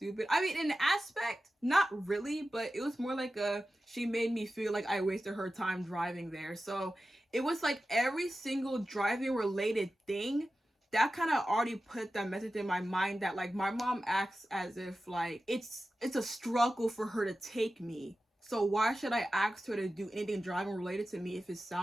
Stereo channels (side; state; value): both; normal; correlation 0.94